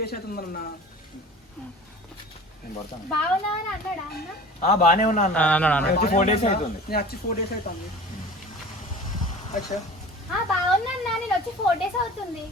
అవుతుందన్న. బానే ఉన్నా అన్న. 4 days అవుతుంది. నేను వచ్చి 4 days అవుతుంది. అచ్చా బాగున్నా, నేను వచ్చి 4 days అవుతుంది.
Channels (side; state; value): both; normal; correlation 0.40